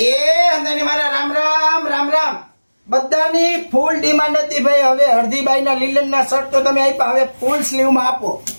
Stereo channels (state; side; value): inverted; both; correlation -1.00